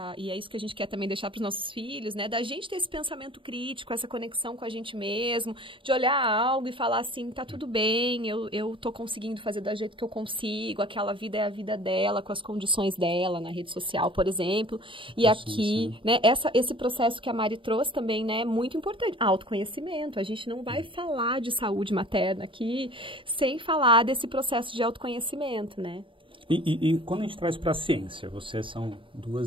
E é isso que a gente quer também deixar para os nossos filhos, né? Da gente ter esse pensamento crítico, essa conexão com a gente mesmo, de olhar algo e falar assim, tá tudo bem, eu tô conseguindo fazer do jeito que eu consigo, aquela vida é a vida dela, com as condições dela na rede social, por exemplo. E aqui, né, esse processo que a Mari trouxe também, né, é muito importante. Autoconhecimento. A gente não vai falar de saúde materna aqui sem falar desse processo de autoconhecimento, né? E quando a gente traz para a ciência, vocês são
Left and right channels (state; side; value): late; left; 0.25 ms